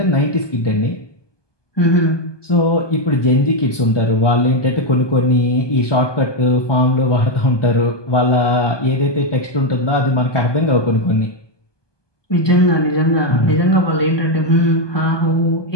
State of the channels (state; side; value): late; right; 1.2 ms